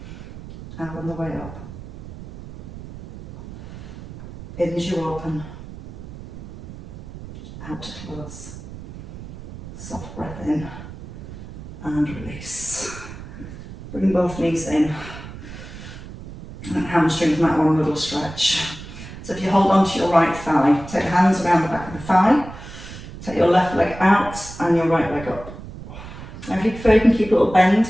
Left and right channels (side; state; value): right; noise; rumble, 13 dB below the sound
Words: Out on the way up. In as you open. Out to close. Soft breath in. And release. Bring both knees in. And hamstrings might want a little stretch. So if you hold on to your right thigh, take your hands around the back of the thigh. Take your left leg out and your right leg up. Now if you prefer, you can keep a little bend